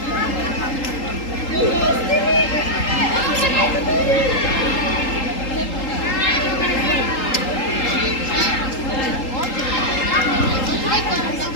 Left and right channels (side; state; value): right; late; 3.8 ms